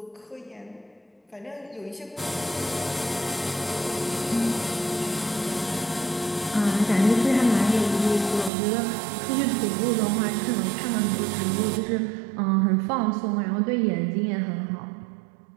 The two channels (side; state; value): left; drops out; at 8.5 s